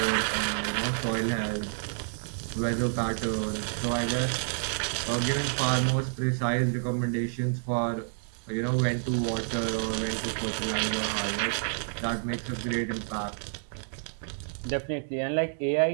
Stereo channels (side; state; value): left; silent; digital silence